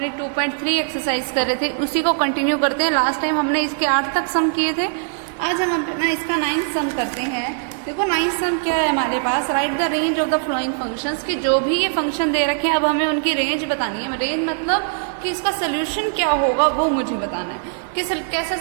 2.3 exercise कर रहे थे, उसी को कंटिन्यू करते हैं। लास्ट टाइम हमने इसके 8 तक सम किए थे, आज हम अपना इसका 9th सम करते हैं। देखो 9th सम क्या है हमारे पास, write the range of the following functions, कि जो भी ये फंक्शन दे रखे हैं अब हमें उनकी रेंज बतानी है। रेंज मतलब कि इसका सोल्यूशन क्या होगा वो मुझे बताना है कि कैसा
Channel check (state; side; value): silent; left; 65 dB below the other